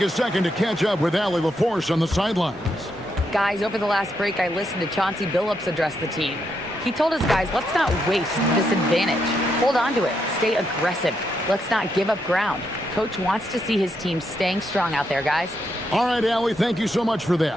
a second to catch up with Allie LaForce on the sidelines. Guys, over the last break, I listened to Chauncey Billups address the team. He told his guys, let's not waste this advantage. Hold on to it. Stay aggressive. Let's not give up ground. Coach wants to see his team staying strong out there, guys. All right, Allie, thank you so much for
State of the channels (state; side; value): normal; both; correlation 0.80